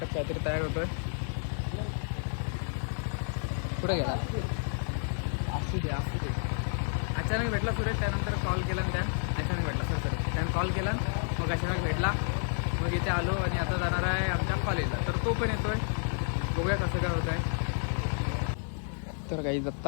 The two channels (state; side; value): silent; right; 58 dB below the other